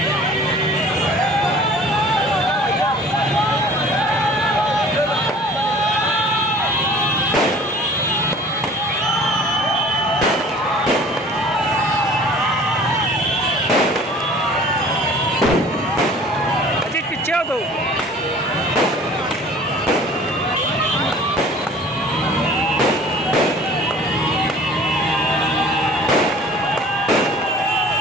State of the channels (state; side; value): normal; both; correlation 0.48